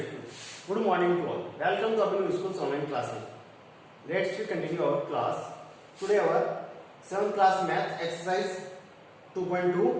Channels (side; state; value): both; identical; correlation 1.00